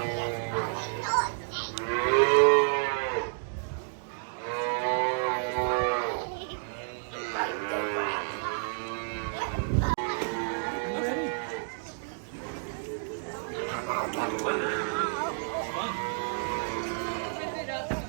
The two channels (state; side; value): silent; left; digital silence